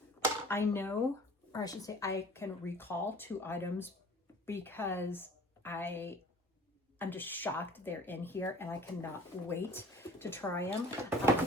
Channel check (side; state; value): both; normal; correlation 0.48